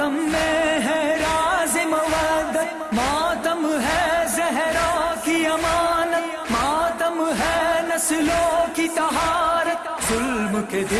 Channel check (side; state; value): both; identical; correlation 1.00